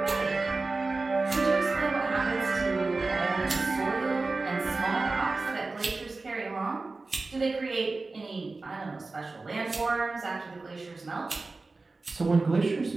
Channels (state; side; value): quieter; left; 3.6 dB